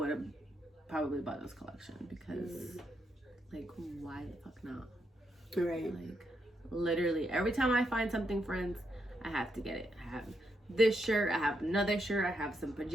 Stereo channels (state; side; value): normal; both; correlation 0.80